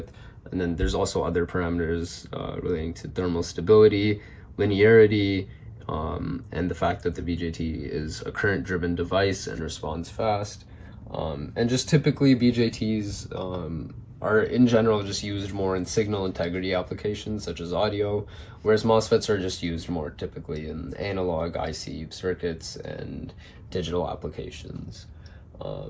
And then there's also other parameters relating to thermal stability, linearity, and the fact that the BJT is a current-driven device and responds fast. And just typically BJTs are in general just used more in signal integrity applications such as audio, whereas MOSFETs are just used more typically in analog IC circuits and digital applications.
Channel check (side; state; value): both; identical; correlation 1.00